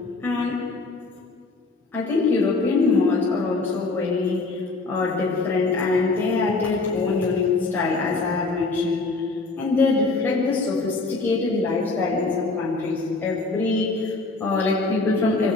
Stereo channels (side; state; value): right; quieter; 3.6 dB